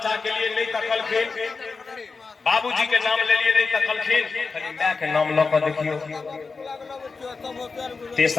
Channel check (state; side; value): quieter; right; 4.5 dB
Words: के लिए नहीं तकलखिन, बाबूजी के नाम ले लिए नहीं तकलखिन, खाली मां के नाम ल के देखियो।